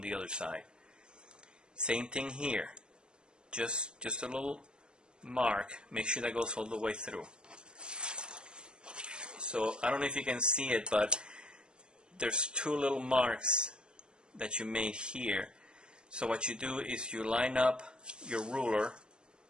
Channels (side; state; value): left; late; 0.052 ms